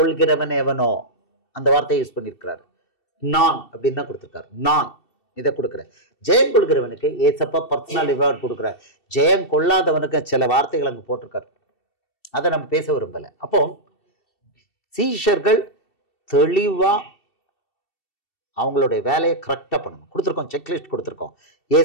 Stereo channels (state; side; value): late; right; 2.7 ms